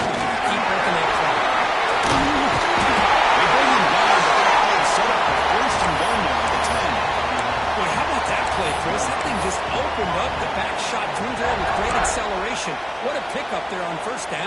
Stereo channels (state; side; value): identical; both; correlation 1.00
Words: you keep working that clock. They bring him down, but that play is set up for first and goal now at the 10. Boy, how about that play, Chris? That thing just opened up. The back shot through there with great acceleration. What a pickup there on first